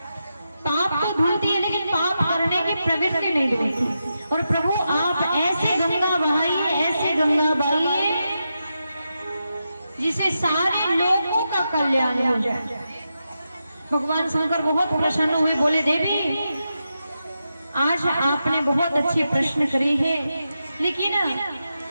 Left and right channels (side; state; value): both; inverted; correlation -0.88